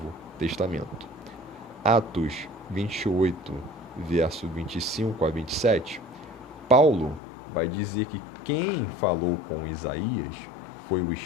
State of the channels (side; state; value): right; drops out; at 7.2 s